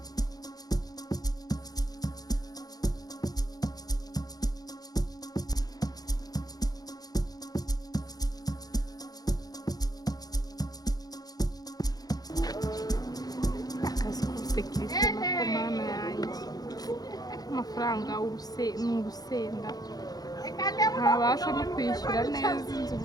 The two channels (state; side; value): late; right; 0.19 ms